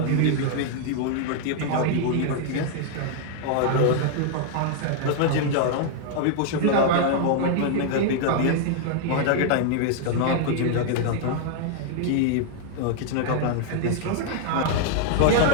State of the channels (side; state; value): both; different; correlation 0.00